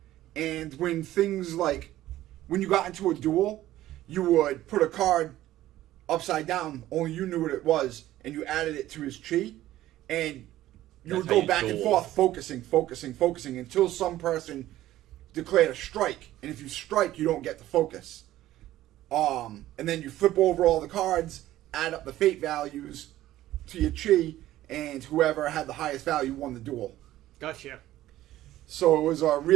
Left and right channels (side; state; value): left; quieter; 14.5 dB